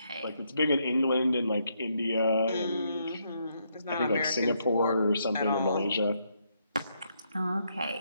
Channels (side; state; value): both; inverted; correlation -0.76